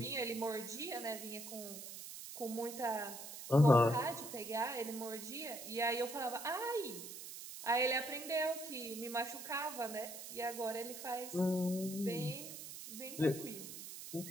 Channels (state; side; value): noise; right; hiss, 10 dB below the sound